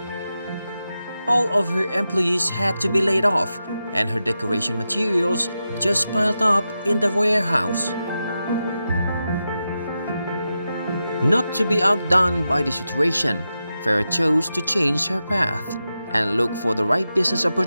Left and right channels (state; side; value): inverted; both; correlation -0.90